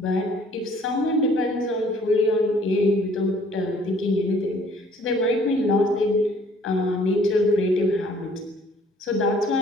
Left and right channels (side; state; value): both; normal; correlation 0.58